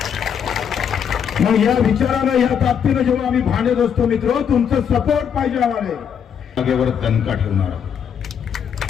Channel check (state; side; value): quieter; right; 7.9 dB